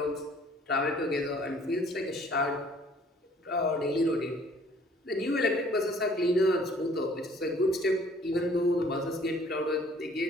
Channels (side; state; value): both; normal; correlation 0.57